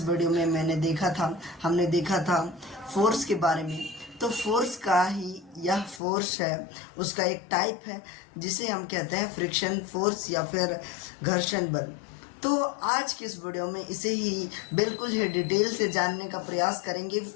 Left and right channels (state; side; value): drops out; right; at 6.0 s